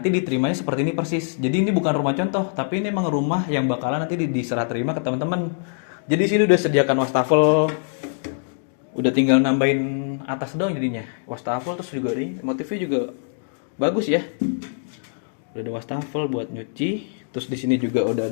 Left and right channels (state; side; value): silent; right; digital silence